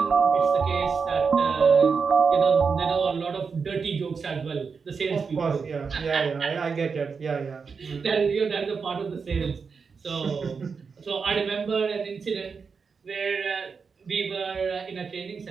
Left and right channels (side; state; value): left; quieter; 5.4 dB